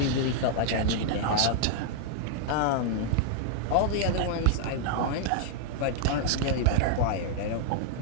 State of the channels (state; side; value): different; both; correlation -0.01